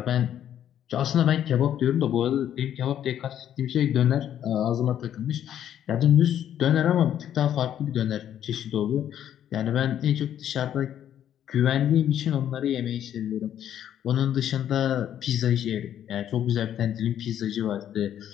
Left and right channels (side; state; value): right; quieter; 10.4 dB